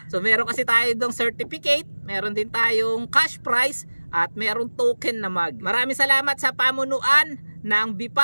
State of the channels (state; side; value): inverted; both; correlation -1.00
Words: So meron kasi tayo dong certificate, meron din tayong cash prize at meron token na mug. Maraming salamat sa pamunuan ng